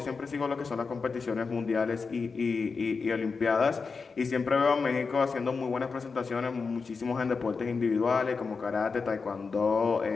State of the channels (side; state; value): right; quieter; 4.8 dB